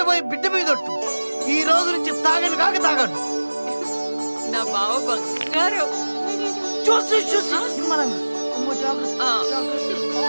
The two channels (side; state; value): both; inverted; correlation -1.00